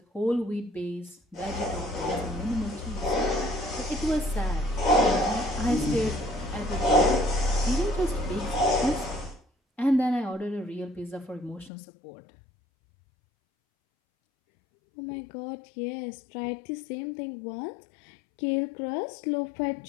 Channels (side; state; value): right; drops out; at 11.7 s